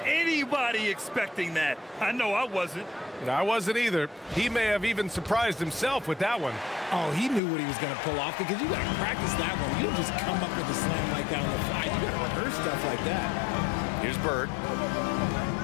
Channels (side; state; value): right; drops out; at 7.4 s